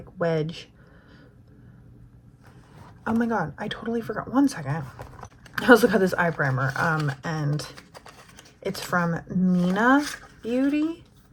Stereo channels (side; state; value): both; identical; correlation 1.00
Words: wedge. Oh my god, I totally forgot. One second. I also got this eye primer, and it's from Mina Beauty,